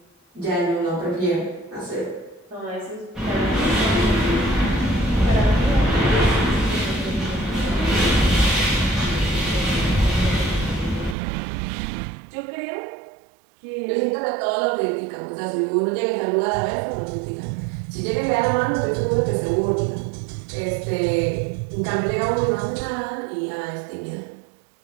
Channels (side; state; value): left; drops out; at 11.2 s